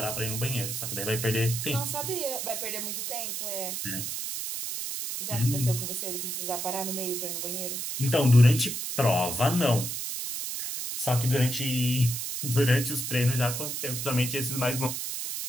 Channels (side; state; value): right; noise; hiss, 4 dB below the sound